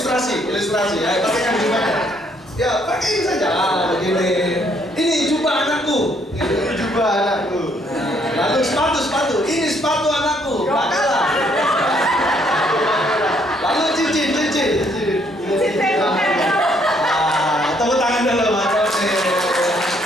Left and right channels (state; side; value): normal; both; correlation 0.68